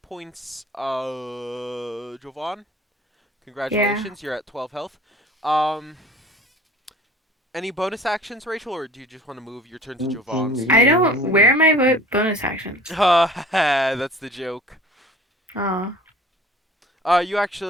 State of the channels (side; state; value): both; normal; correlation 0.46